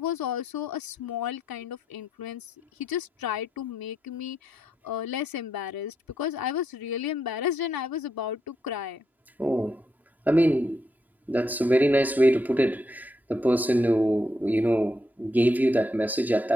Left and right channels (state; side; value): normal; both; correlation 0.79